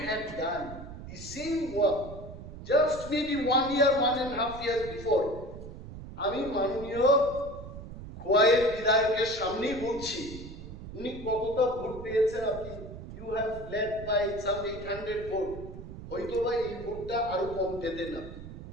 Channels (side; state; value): right; noise; rumble, 12 dB below the sound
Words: had done the same work just maybe 1 year, 1.5 years before, আমি মাননীয় খোয়াইয়ের বিধায়কের সামনেই বলছি, উনি কতটা ভোট পেয়েছেন, আপনি you have led by some 800 vote, হয়তো বা এই ভোটটা আরো কম পেতেন না।